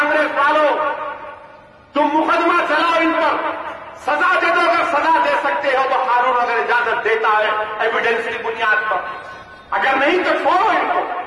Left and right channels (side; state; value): both; identical; correlation 1.00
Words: والوں, تم مقدمہ چلاؤ ان پر, سزا دے دو. اگر سزا دے سکتے ہو تو قانون اگر اجازت دیتا ہے ایویڈنس کی بنیاد پر, اگر نہیں تو چھوڑو ان کو.